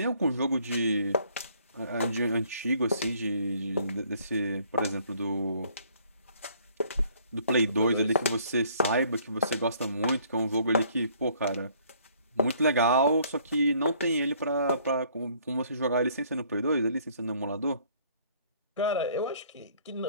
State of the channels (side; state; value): both; inverted; correlation -0.61